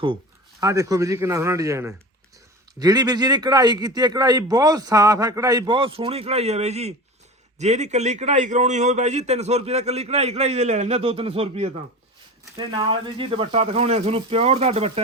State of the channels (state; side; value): normal; both; correlation 0.31